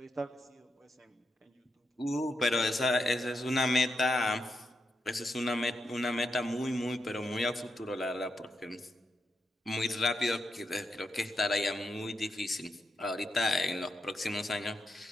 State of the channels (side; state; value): both; normal; correlation 0.83